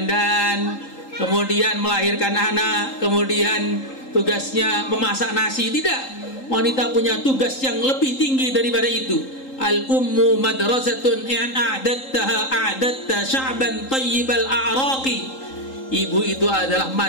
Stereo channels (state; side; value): late; right; 3.8 ms